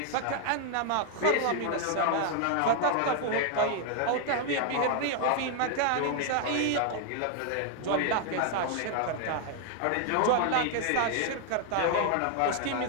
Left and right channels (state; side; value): different; both; correlation 0.00